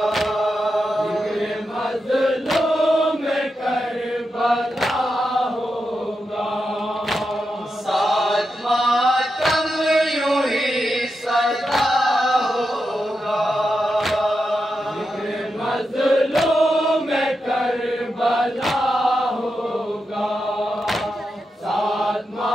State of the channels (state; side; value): normal; both; correlation 0.87